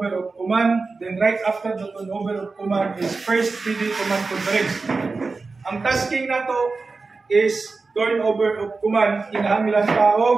of command, then right after the turnover of command is first PD command conference. Ang tasking na to is turnover of command, kinahanglan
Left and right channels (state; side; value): quieter; left; 4.0 dB